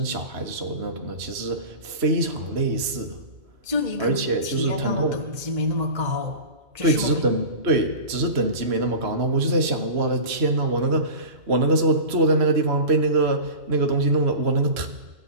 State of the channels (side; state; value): left; late; 3.0 ms